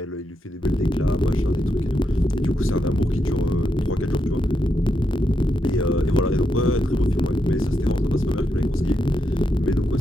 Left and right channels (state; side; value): normal; both; correlation 0.83